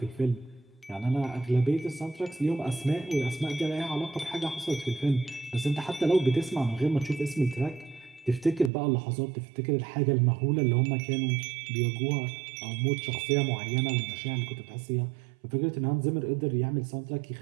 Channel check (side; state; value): left; drops out; at 8.7 s